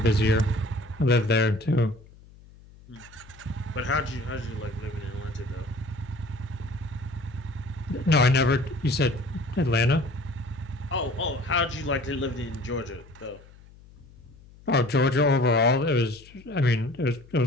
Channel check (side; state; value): left; noise; hum, 23 dB below the sound